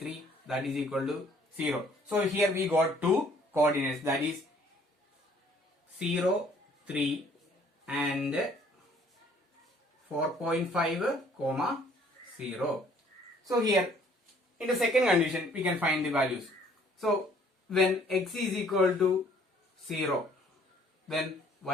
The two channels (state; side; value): normal; both; correlation 0.60